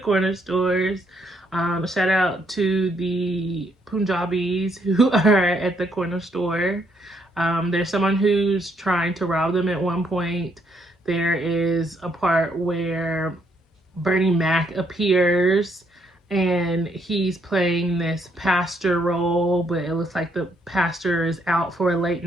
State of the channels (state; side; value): normal; both; correlation 0.72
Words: stores. Shout out to the Punjabis who are at the corner store. There's someone who's trying to rob them at one point. There is a part where Bernie Mac appears and he's playing this pastor role, but it looks like the pastor is out for a late